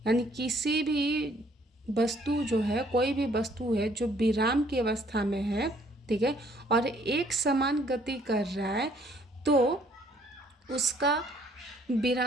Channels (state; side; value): normal; both; correlation 0.63